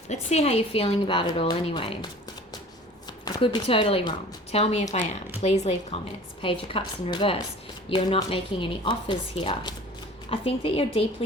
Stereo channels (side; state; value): both; normal; correlation 0.44